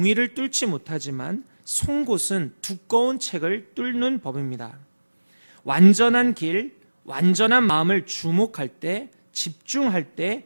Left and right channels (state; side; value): inverted; both; correlation -1.00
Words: 뚫지 못하지만 송곳은 두꺼운 책을 뚫는 법입니다. 완전한 길, 완전한 마음을 주목할 때, 집중할 때